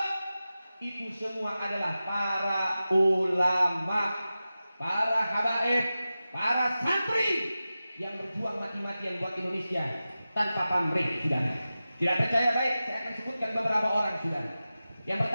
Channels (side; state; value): both; inverted; correlation -0.95